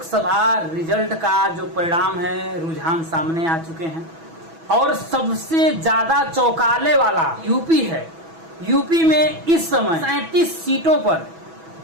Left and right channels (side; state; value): left; late; 6.1 ms